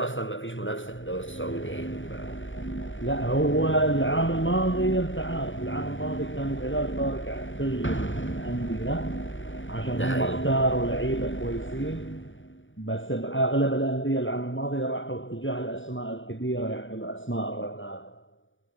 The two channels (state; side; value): late; right; 0.56 ms